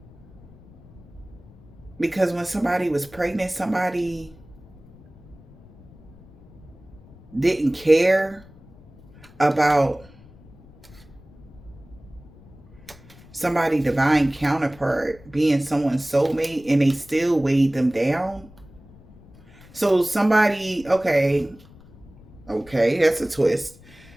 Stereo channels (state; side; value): noise; left; rumble, 23 dB below the sound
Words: Because when somebody was pregnant, somebody didn't care about somebody divine counterpart being someone's soulmate, and they still weighed them down. So somebody, okay, that's a twist.